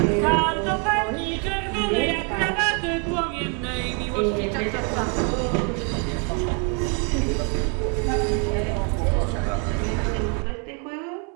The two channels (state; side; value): quieter; left; 37.3 dB